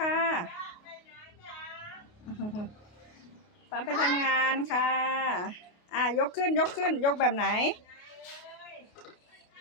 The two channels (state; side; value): late; right; 28 ms